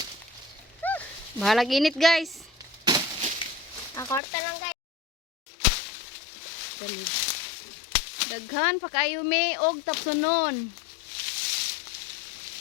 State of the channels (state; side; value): drops out; right; at 4.2 s